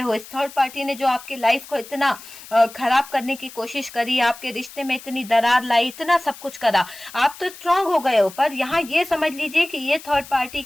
इस थर्ड पार्टी ने जो आपकी लाइफ को इतना खराब करने की कोशिश करी, आपके रिश्ते में इतनी दरार लाई, इतना सब कुछ करा, आप तो स्ट्रांग हो गए हो। पर यहाँ ये समझ लीजिए कि ये थर्ड पार्टी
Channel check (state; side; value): noise; left; hiss, 17 dB below the sound